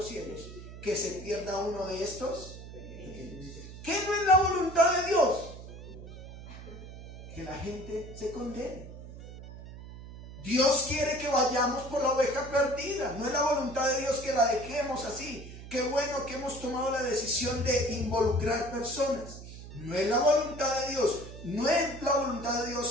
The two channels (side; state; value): right; noise; hum, 13 dB below the sound